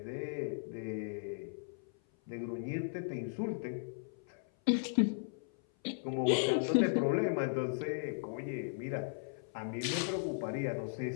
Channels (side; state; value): right; silent; 53 dB below the other